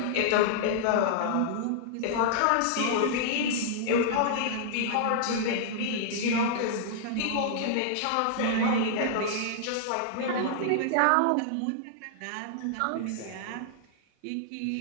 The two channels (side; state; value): both; different; correlation -0.01